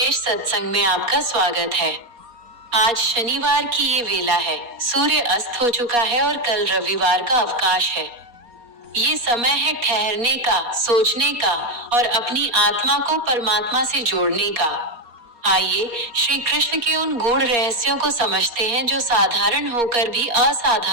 सत्संग में आपका स्वागत है। आज शनिवार की ये वेला है, सूर्य अस्त हो चुका है और कल रविवार का अवकाश है। ये समय है ठहरने का, सोचने का और अपनी आत्मा को परमात्मा से जोड़ने का। आइए श्री कृष्ण के उन गूढ़ रहस्यों को समझते हैं जो साधारण होकर भी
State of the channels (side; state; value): left; late; 4.3 ms